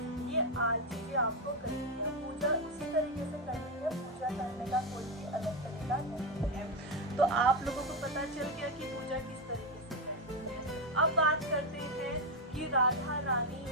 ये आज चीजें आपको करनी है। पूजा उसी तरीके से करनी है, पूजा करने का कोई भी अलग तरीका नहीं है। तो आप लोगों को पता चल गया कि पूजा किस तरीके से करनी है। अब बात करते हैं कि राधा रानी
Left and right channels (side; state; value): both; normal; correlation 0.08